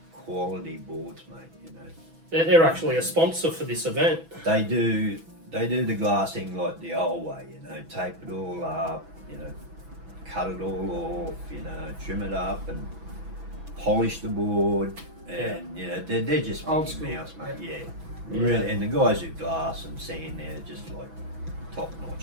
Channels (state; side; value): late; left; 6.1 ms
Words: quality boards, mate. They're actually a sponsor for this event. They do the glassing like the old way, tape it all up, cut it all off, trim it up and polish the board, and they're just old school, mouse, mate. Yeah, really. And the guys who glass and sand, they're just like top